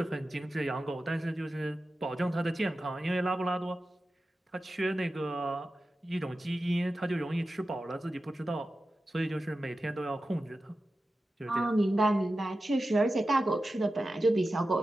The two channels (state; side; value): normal; both; correlation 0.93